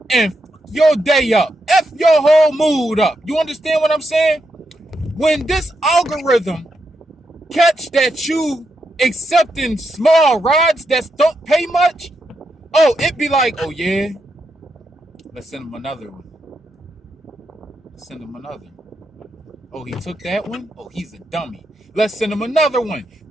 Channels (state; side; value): normal; both; correlation 0.83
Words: and f your day up, F your whole mood up. You understand what I'm saying? When this algorithm catch that you accepting small rides that don't pay much, oh, it be like, oh yeah, let's send him another one. Send him another. Oh, he took that one? Oh, he's a dummy. Let's send him another one.